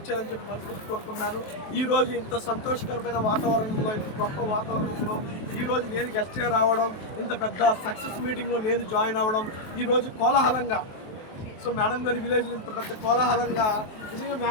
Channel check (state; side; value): late; right; 23 ms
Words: చేయాలని చెప్పి మనసు కోరుకున్నాను. ఈ రోజు ఇంత సంతోషకరమైన వాతావరణంలో, ఇంత గొప్ప వాతావరణంలో ఈ రోజు నేను గెస్ట్ గా రావడం, ఇంత పెద్ద సక్సెస్ మీటింగ్ లో నేను జాయిన్ అవ్వడం, ఈ రోజు కోలాహలంగా మేడం గారి విలేజ్ ఇంత పెద్ద కోలాహలంగా నిజంగా